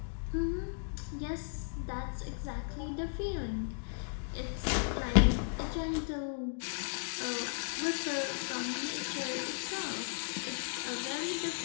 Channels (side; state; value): right; silent; digital silence